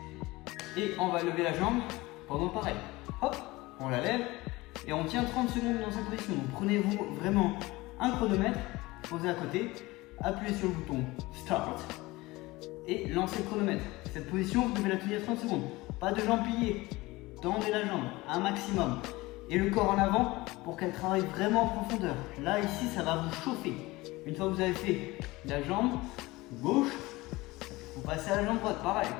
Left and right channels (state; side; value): quieter; right; 20.8 dB